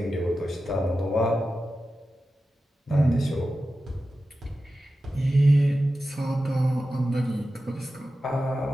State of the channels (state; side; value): normal; both; correlation 0.93